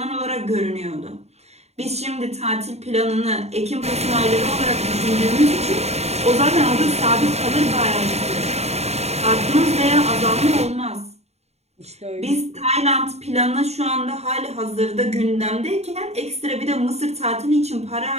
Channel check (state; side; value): late; left; 0.31 ms